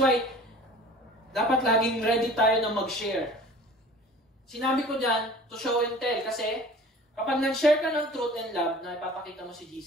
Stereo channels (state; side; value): normal; both; correlation 0.45